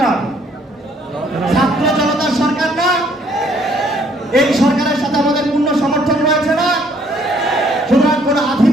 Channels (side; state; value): both; normal; correlation 0.64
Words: ছাত্র জনতার সরকার না? এই সরকারের সাথে আমাদের পূর্ণ সমর্থন রয়েছে না? সুতরাং কোন